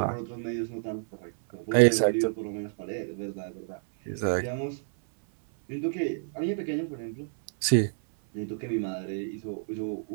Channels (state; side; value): silent; left; 58 dB below the other